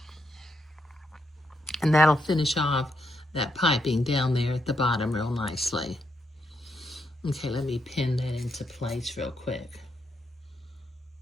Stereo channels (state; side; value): normal; both; correlation 0.79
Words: And that'll finish off that piping down there at the bottom real nicely. Okay, let me pin that into place real quick.